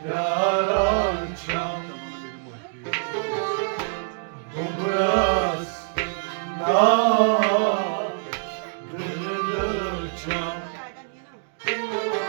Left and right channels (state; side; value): silent; left; 62 dB below the other